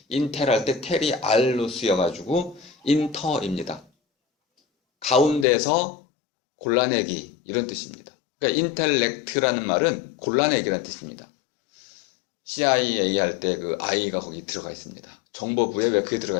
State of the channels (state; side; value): drops out; right; at 5.5 s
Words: 인텔 할 때 텔이 알로 쓰여가지고 인터입니다. 가운데서 골라내기 이런 뜻입니다. 그러니까 인텔렉트라는 말은 골라내기라는 뜻입니다. CIA 할 때 그 I가 거기 들어가 있습니다. 정보부에 왜 그게 들어가